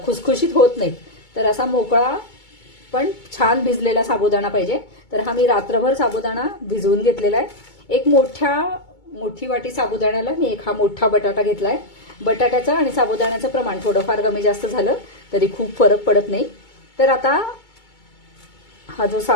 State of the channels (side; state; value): right; late; 2.2 ms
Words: खुसखुशीत होत नाहीत। तर असा मोकळा पण छान भिजलेला साबुदाणा पाहिजे। तर हा मी रात्रभर साबुदाणा भिजवून घेतलेला आहे। एक मोठी वाटी साबुदाण्याला मी एक हा मोठा बटाटा घेतलाय। बटाट्याचं आणि साबुदाण्याचं प्रमाण थोडंफार कमी जास्त झालं तरी खूप फरक पडत नाही। तर आता हा जो